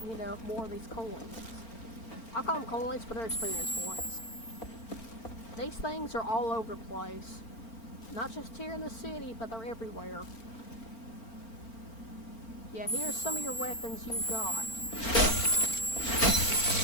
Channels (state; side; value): late; right; 4.5 ms